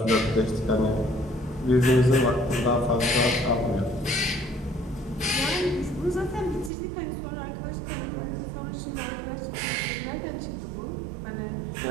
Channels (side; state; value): left; drops out; at 6.7 s